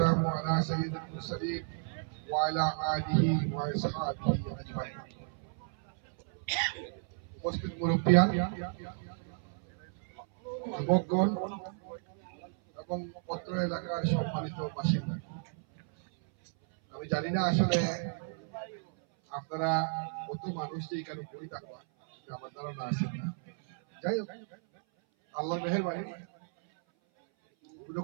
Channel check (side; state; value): left; silent; 56 dB below the other